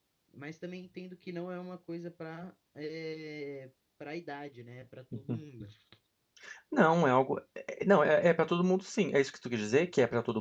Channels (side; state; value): both; identical; correlation 1.00